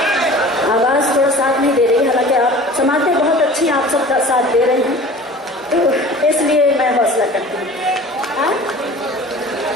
آواز تھوڑا ساتھ نہیں دے رہی، حالانکہ آپ سماعتیں بہت اچھی آپ سب کا ساتھ دے رہے ہیں، تو اس لیے میں حوصلہ کرتی ہوں.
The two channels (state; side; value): normal; both; correlation 0.42